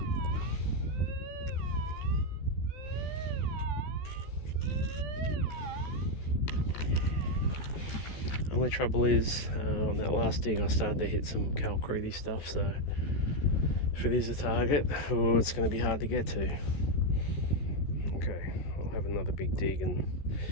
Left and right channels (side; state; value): right; late; 14 ms